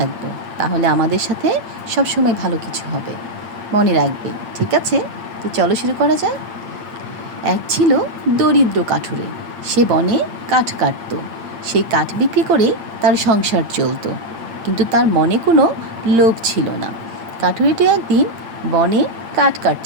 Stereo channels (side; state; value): left; late; 8.8 ms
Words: তাহলে আমাদের সাথে সবসময় ভালো কিছু হবে। মনে রাখবে, ঠিক আছে? তো চলো শুরু করা যাক। এক ছিল দরিদ্র কাঠুরে। সে বনে কাঠ কাটত। সেই কাঠ বিক্রি করে তার সংসার চলত, কিন্তু তার মনে কোনো লোভ ছিল না। কাঠুরিটি একদিন বনে কাঠ